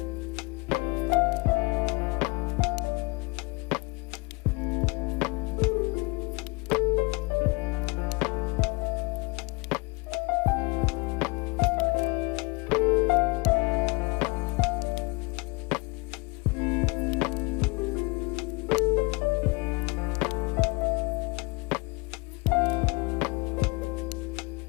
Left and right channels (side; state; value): right; quieter; 27.5 dB